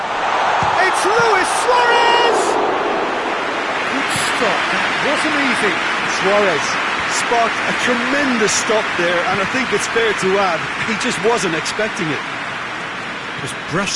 It's Luis Suarez! Good stop, that wasn't easy. Suarez sparked a tremendous stop there, and I think it's fair to add, he just wasn't expecting it. Just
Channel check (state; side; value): identical; both; correlation 1.00